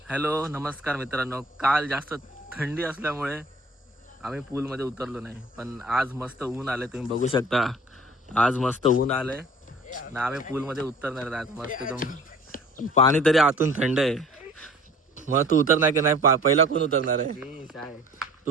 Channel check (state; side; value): normal; both; correlation 0.48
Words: Hello नमस्कार मित्रांनो. काल जास्त थंडी असल्यामुळे आम्ही पूलमध्ये उतरलो नाही, पण आज मस्त ऊन आले, तुम्ही बघू शकता. आज मस्त ऊन आले ना, आम्ही पूलमध्ये उतरणार आहे आज मस्त पण पाणी तरी आतून थंड आहे. मग तू उतरणार की नाही? पहिला कोण उतरणार आहे?